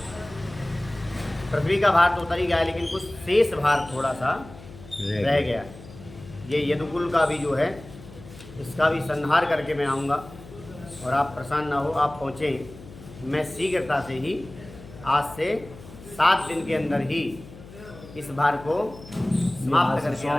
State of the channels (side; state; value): left; noise; hum, 17 dB below the sound